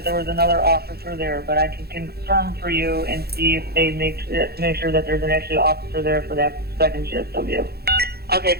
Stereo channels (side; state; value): left; late; 0.46 ms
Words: there was another officer there, but I can confirm for you and see if they make sure that there's an actual officer there for that second GSW. Okay,